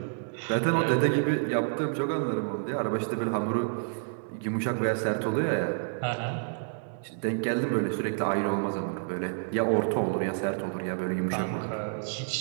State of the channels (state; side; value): silent; left; 59 dB below the other